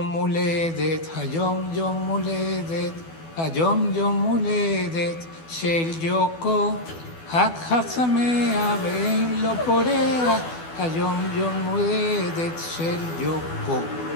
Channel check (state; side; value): late; right; 12 ms